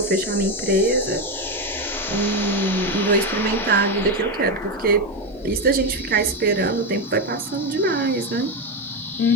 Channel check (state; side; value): normal; both; correlation 0.11